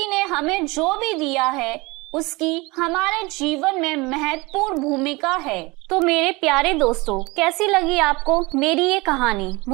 ने हमें जो भी दिया है उसकी हमारे जीवन में महत्वपूर्ण भूमिका है। तो मेरे प्यारे दोस्तों, कैसी लगी आपको मेरी ये कहानी?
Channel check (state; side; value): quieter; left; 24.1 dB